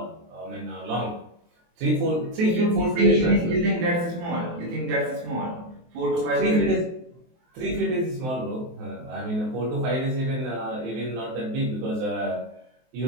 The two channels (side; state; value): left; late; 23 ms